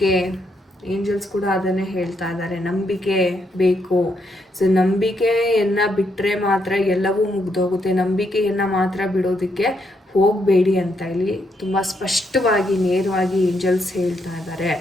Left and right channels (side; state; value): both; normal; correlation 0.77